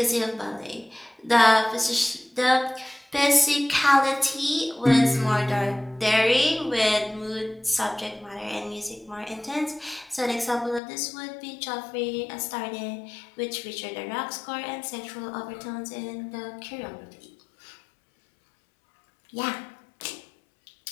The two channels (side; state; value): right; drops out; at 10.8 s